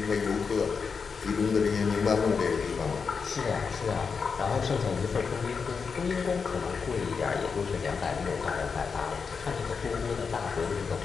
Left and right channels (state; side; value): quieter; right; 5.5 dB